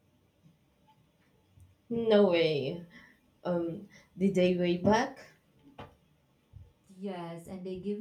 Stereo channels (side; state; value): both; identical; correlation 1.00